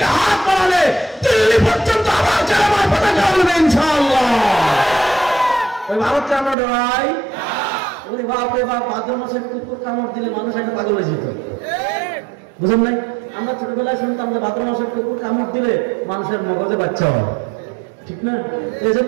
হাত বাড়ালে দিল্লি পর্যন্ত আবার চেরাবার পতাকা উঠবে ইনশাআল্লাহ। ওই ভারতকে আমরা ডরাই? ওরে বাপ রে বাপ, ভাদ্র মাসে কুকুর কামড় দিলে মানুষ একটা পাগল হয়ে যেত, বুঝলেন নাই? আমরা ছোটবেলায় শুনতাম যে ভাদ্র মাসে কুকুর কামড় দিলে মানুষের মগজে বাচ্চা হয়, ঠিক না? এই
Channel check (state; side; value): drops out; left; at 6.6 s